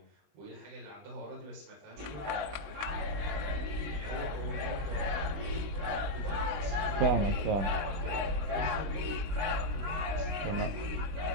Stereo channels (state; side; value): late; left; 19 ms